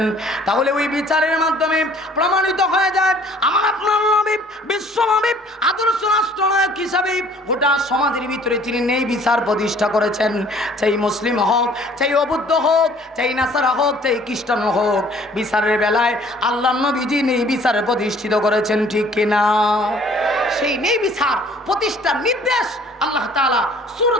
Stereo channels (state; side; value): normal; both; correlation 0.55